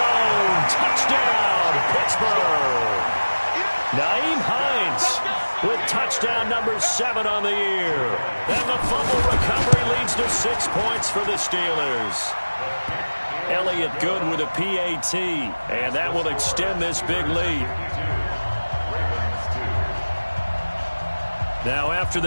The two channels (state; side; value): inverted; both; correlation -1.00